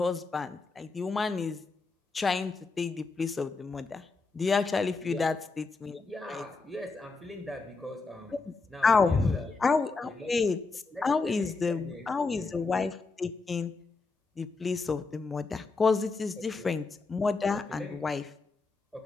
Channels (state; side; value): quieter; right; 4.0 dB